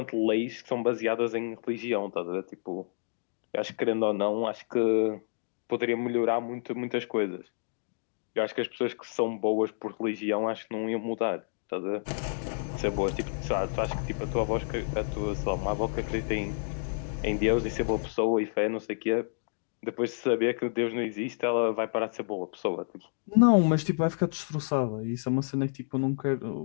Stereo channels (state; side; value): silent; right; digital silence